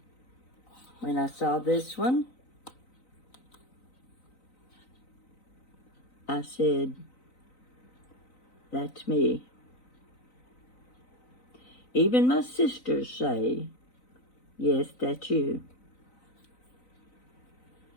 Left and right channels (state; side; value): late; right; 3.9 ms